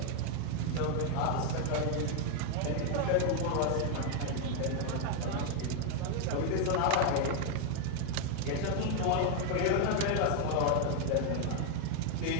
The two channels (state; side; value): different; both; correlation 0.00